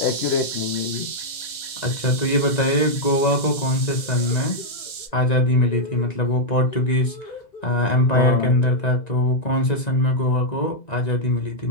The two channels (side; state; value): right; late; 1.3 ms